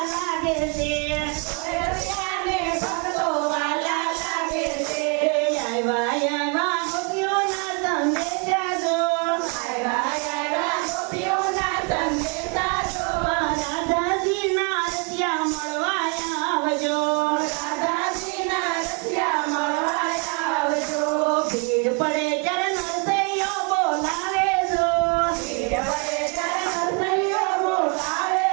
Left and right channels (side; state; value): left; quieter; 36.0 dB